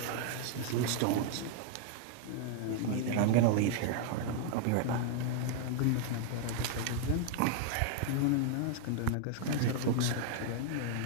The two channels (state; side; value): different; both; correlation 0.00